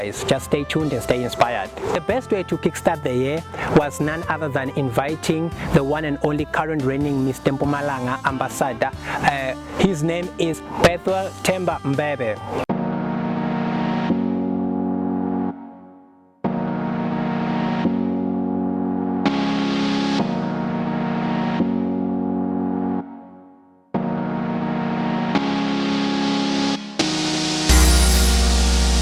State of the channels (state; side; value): identical; both; correlation 1.00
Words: Just stay tuned and stay inspired. The best way to kickstart the year was none other than inviting the one and only current reigning Mr Mpumalanga Ambassador. His name is Mr Mbebe.